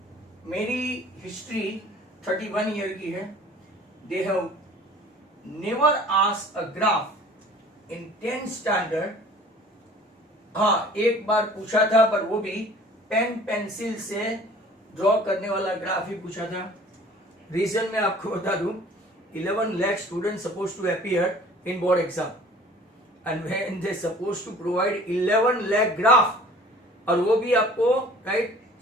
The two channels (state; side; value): normal; both; correlation 0.49